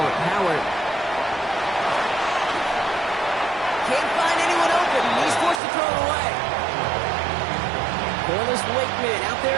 Howard. Can't find anyone open. He's forced to throw it away. Corliss Wakeman out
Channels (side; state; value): left; drops out; at 5.6 s